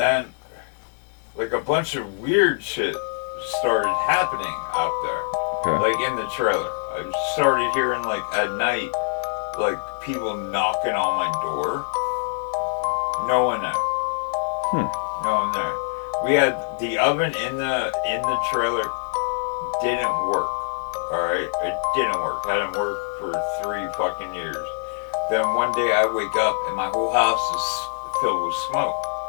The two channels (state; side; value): silent; right; 63 dB below the other